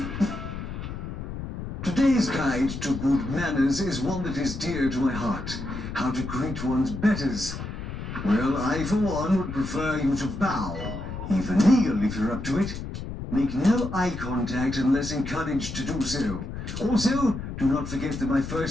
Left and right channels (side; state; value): left; noise; rumble, 7 dB below the sound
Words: Today's guide to good manners is one that is dear to my heart. How to greet one's betters. Well, I, for one, would prefer you to bow. Even kneel if you're up to it. Make no eye contact unless encouraged to do so. Also, do not forget that my